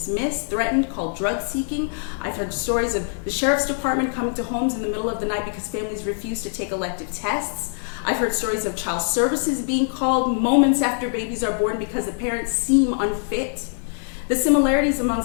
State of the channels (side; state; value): right; silent; digital silence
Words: threatened, called drug seeking. I've heard stories of the sheriff's department coming to homes in the middle of the night because families refuse to take elective tests. I've heard stories of child services being called moments after babies are born because the parents seem unfit. The similarities